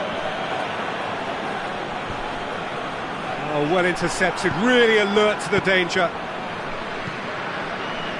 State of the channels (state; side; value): identical; both; correlation 1.00